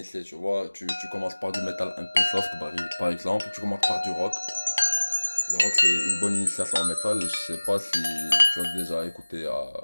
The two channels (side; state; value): both; inverted; correlation -1.00